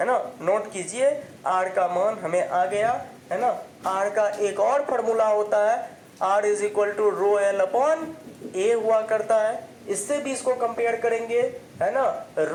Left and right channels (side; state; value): both; identical; correlation 1.00